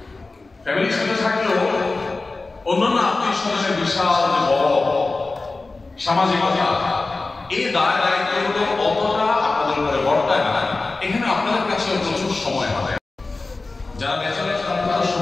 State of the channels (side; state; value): right; quieter; 3.5 dB